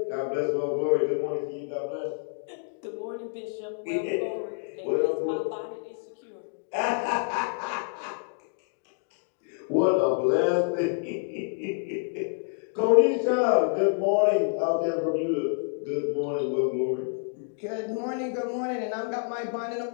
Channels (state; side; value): silent; right; digital silence